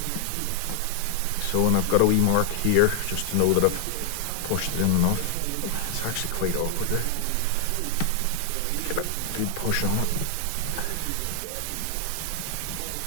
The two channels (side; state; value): both; different; correlation 0.00